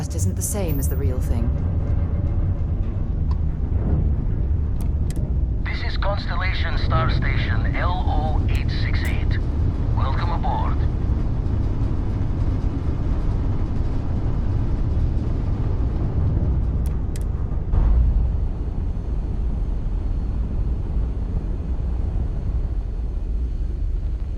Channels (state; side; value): identical; both; correlation 1.00